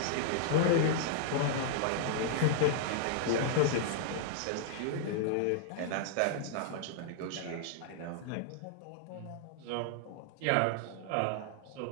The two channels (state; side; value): different; both; correlation -0.01